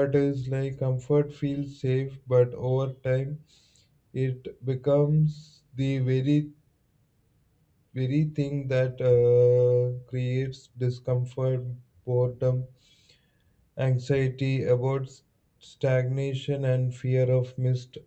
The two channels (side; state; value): both; identical; correlation 1.00